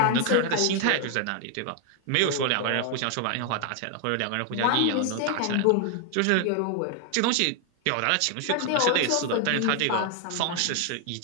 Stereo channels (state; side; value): different; both; correlation 0.00